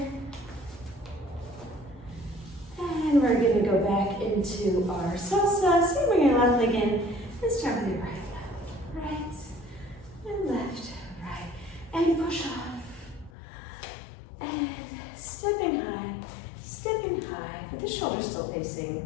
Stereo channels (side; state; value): right; drops out; at 13.3 s